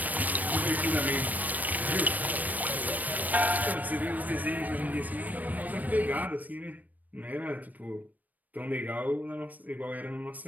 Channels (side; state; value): left; late; 0.080 ms